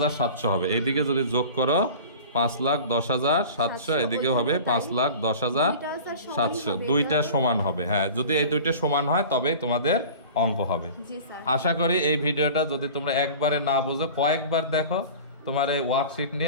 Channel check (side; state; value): both; inverted; correlation -0.39